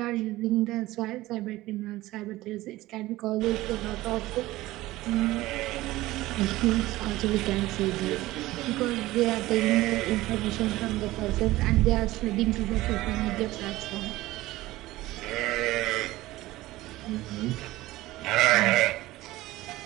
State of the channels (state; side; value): quieter; left; 17.6 dB